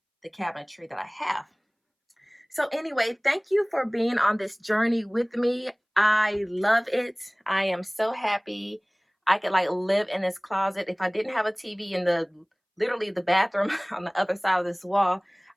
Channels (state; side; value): identical; both; correlation 1.00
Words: the cabinetry that I have. So anyway, thank you for being on this journey with me. I love it. I am so happy. I could like live in this closet. If I didn't have a TV in the literally the bathroom on the other side of this wall,